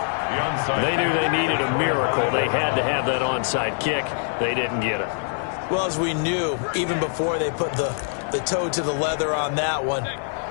They knew they needed a miracle. They had to have that onside kick. They didn't get it. Well, as we knew, even before they put the toe to the leather on that one,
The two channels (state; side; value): silent; right; 63 dB below the other